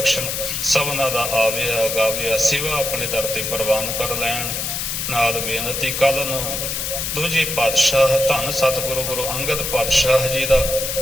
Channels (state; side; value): noise; left; hiss, 2 dB below the sound